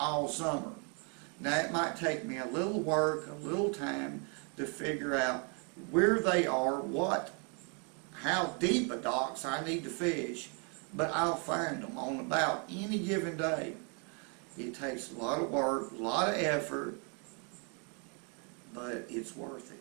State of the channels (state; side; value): quieter; left; 37.1 dB